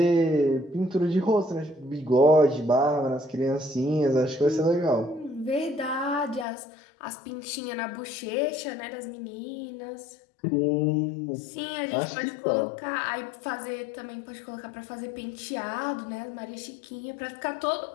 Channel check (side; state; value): right; drops out; at 6.5 s